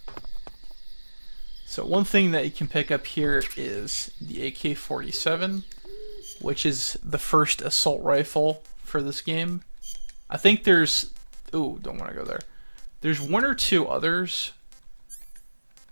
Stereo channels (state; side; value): inverted; both; correlation -1.00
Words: So one thing that you can pick up here is the AK-47, which is the first assault rifle for this game. I think there's... Ooh, don't want to go there. There's one or two others.